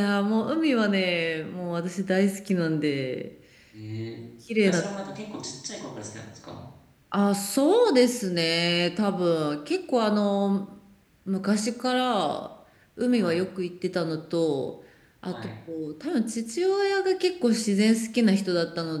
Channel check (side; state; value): both; identical; correlation 1.00